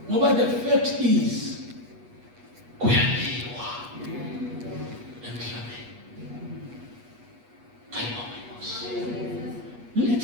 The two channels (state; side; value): late; left; 8.3 ms